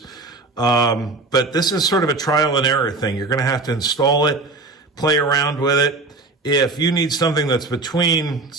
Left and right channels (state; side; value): quieter; left; 3.5 dB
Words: But this is sort of a trial and error thing. You're going to have to install it, play around with it. If you need something that's between,